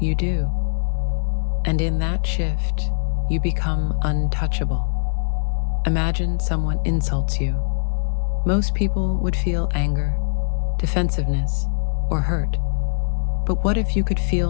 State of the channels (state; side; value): silent; right; digital silence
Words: do. And in that shift, you become untouchable. Imagine someone insults you. Most people would feel anger, defensiveness, or hurt. But what if you could